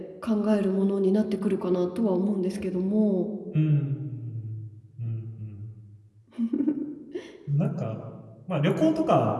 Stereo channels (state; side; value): identical; both; correlation 1.00